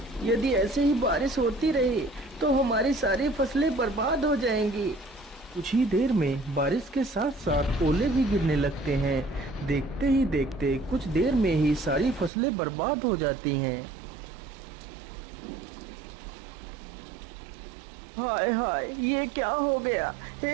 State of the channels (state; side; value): drops out; left; at 12.3 s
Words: यदि ऐसे ही बारिश होती रही तो हमारी सारी फसलें बर्बाद हो जाएंगी। कुछ ही देर में बारिश के साथ साथ ओले भी गिरने लगते हैं। देखते ही देखते कुछ देर में ही सारी फसलें बर्बाद हो जाती हैं। हाय हाय, ये क्या हो गया?